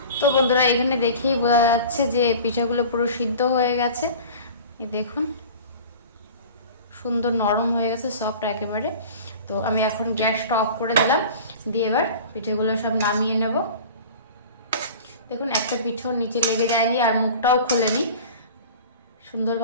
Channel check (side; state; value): both; inverted; correlation -0.40